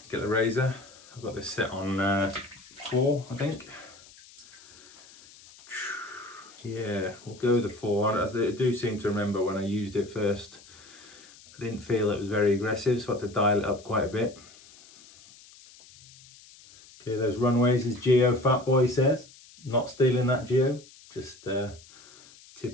get the razor. I've got this set on 4, I think. Yeah, we'll go with the 4. I do seem to remember when I used it first, I didn't feel it was very aggressive, so I had to dial it up quite a bit. Clear those runways, as Geo Fatboy says. Not stealing that, Geo. Just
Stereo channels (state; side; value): noise; left; hiss, 23 dB below the sound